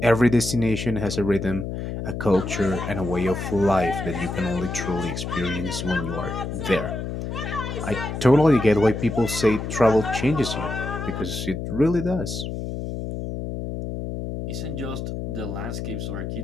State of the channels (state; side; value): noise; left; hum, 5 dB below the sound